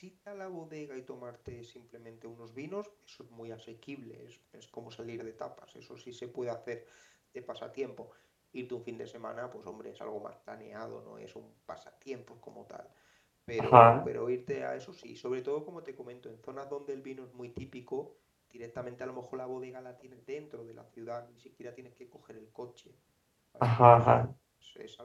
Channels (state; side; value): identical; both; correlation 1.00